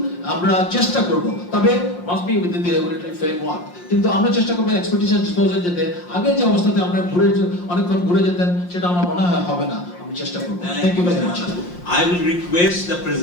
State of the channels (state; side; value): late; right; 5.7 ms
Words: আমরা চেষ্টা করব, তবে must be within the regulatory framework. কিন্তু আমরা চেষ্টা করব এক্সপেডিশন ডিসপোজাল যেতে আগের যে অবস্থাতে আমরা অনেকক্ষণ ঘুরে যেতেন সেটা আমার মনে হয় হবে না। চেষ্টা করব। Thank you very much. I will request the